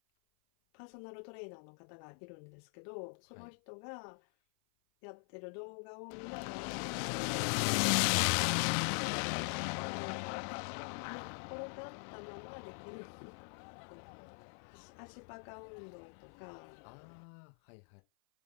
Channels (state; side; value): silent; right; 50 dB below the other